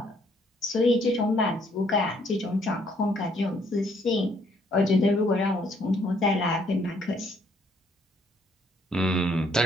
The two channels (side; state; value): both; normal; correlation 0.67